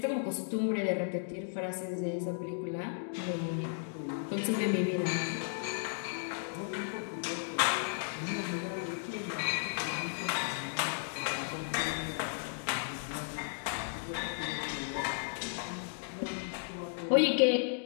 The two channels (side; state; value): right; silent; digital silence